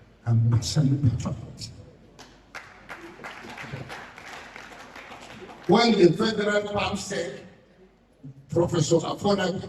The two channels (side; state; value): both; identical; correlation 1.00